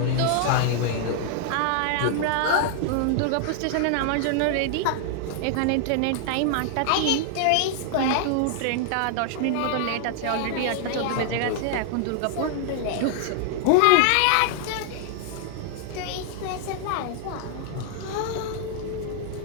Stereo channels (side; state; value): both; different; correlation 0.00